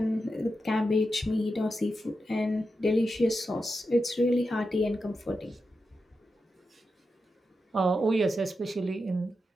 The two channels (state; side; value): normal; both; correlation 0.89